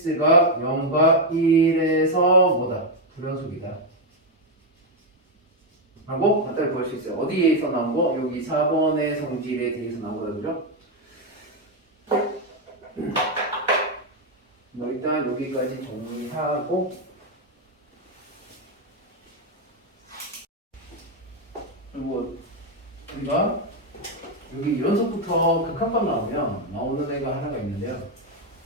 0과 1에서 뭐다? 불연속이다. 라고 간단히 구할 수 있어요. 어디에서 나온 거? 여기 4번의 성질에 대해서 나온 거다. 그죠? 일단 여기까지 정리하고 그리고 우리가 여기 연속부터 극한값 나오면 나오는 애가 하나가 있는데요.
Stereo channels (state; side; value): normal; both; correlation 0.04